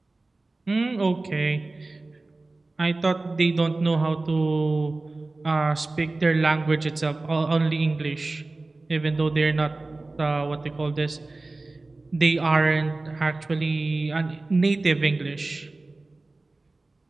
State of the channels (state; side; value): quieter; left; 3.2 dB